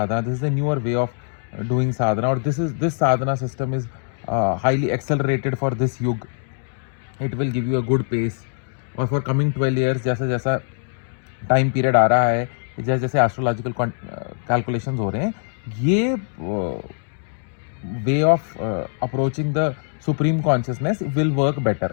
this is a newer way of doing sadhana, और this sadhana system is highly accelerated for this yuga, it will give you a good pace. और फॉर कमिंग 12 ईयर्स जैसा जैसा time period आ रहा है, जैसे जैसे astrological calculations हो रहे हैं, ये way of approaching the supreme consciousness will work better.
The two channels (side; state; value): right; silent; digital silence